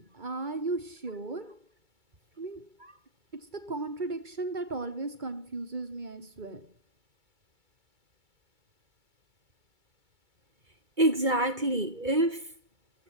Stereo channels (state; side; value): late; left; 2.2 ms